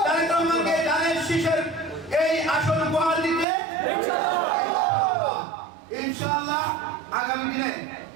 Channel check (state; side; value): drops out; left; at 3.5 s